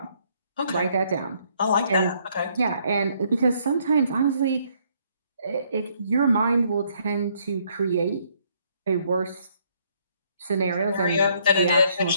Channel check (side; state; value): both; inverted; correlation -0.68